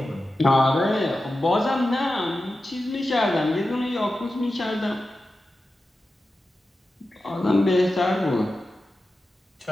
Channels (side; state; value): both; normal; correlation 0.92